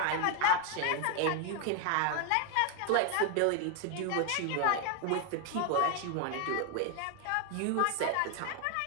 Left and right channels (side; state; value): both; different; correlation 0.00